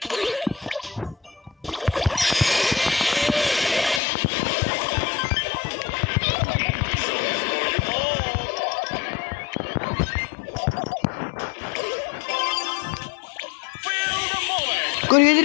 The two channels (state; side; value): drops out; right; at 4.0 s